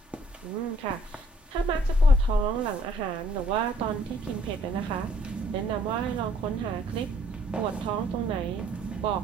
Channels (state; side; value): normal; both; correlation 0.63